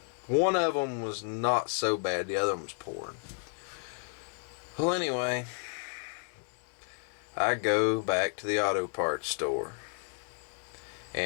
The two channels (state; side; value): quieter; right; 39.1 dB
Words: them was not so bad. The other one was pouring. Well, anyway, I go back to the auto parts store,